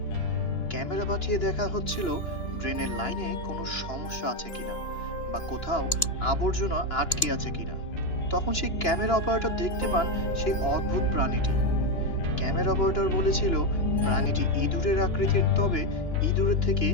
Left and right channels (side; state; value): right; late; 2.9 ms